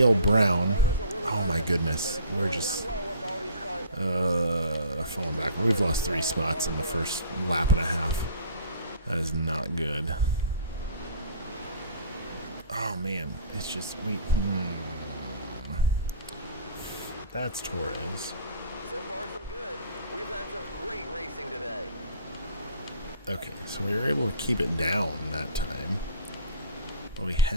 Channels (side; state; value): both; inverted; correlation -0.46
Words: Brown. Oh my goodness, we're just falling back. We've lost 3 spots in the first lap and a half. That is not good. Oh man, it's just That's Torres. So far, so good. We've had some great racing today. Okay, so we were able to keep it down that time, but we